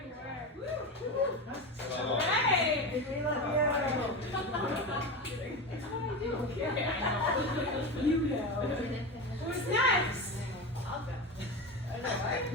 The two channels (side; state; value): both; normal; correlation 0.22